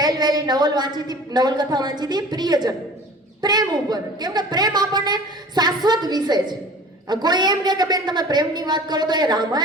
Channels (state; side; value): normal; both; correlation 0.43